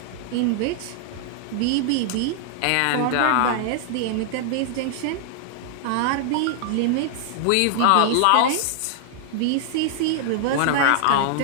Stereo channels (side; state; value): both; different; correlation -0.01